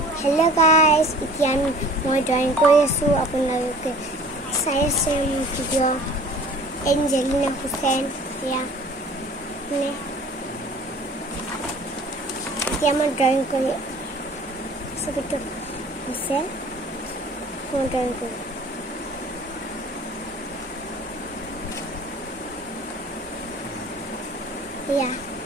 Hello guys, এতিয়া মই drawing কৰি আছো আপোনালোকে চাই আছে ভিডিও এঞ্জেলিনা হুসেন ইয়া নে এতিয়া মই ড্ৰয়িং কৰি ছবিটো আছে মই ড্ৰয়িং কৰি ইয়া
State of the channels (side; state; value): both; normal; correlation 0.47